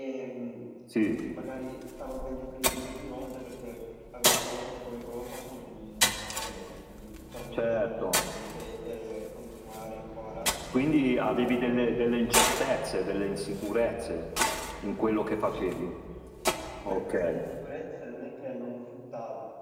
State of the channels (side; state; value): both; identical; correlation 1.00